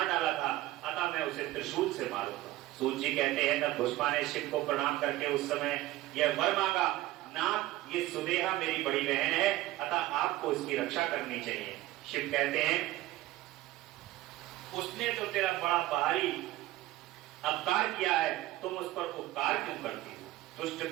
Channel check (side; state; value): left; quieter; 16.7 dB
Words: डाला था, अतः मैं उसे त्रिशूल से मारूंगा। सूत जी कहते हैं तब भुष्मा ने शिव को प्रणाम करके उस समय यह वर मांगा, नाथ ये सुदेहा मेरी बड़ी बहन है, अतः आपको इसकी रक्षा करनी चाहिए। शिव कहते हैं उसने तो तेरा बड़ा भारी अपकार किया है, तुम उस पर उपकार क्यों करती हो? दुष्ट